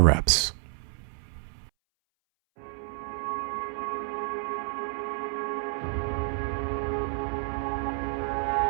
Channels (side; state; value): left; silent; 58 dB below the other